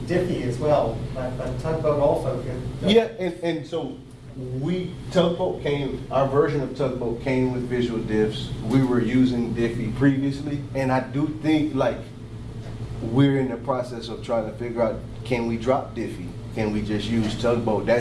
Diffie as well, but Tugboat also could. Yeah, and so our version of Tugboat came with visual diffs. We were using Diffie previously, and I do think like we're in the process of trying to figure out, can we drop Diffie? Can we just use Tugboat?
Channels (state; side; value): identical; both; correlation 1.00